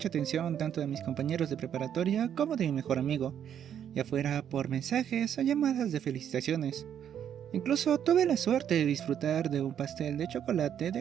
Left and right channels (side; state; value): left; quieter; 9.3 dB